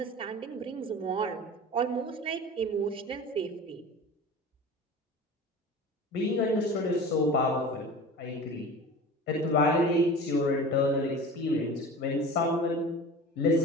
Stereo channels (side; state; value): both; normal; correlation 0.36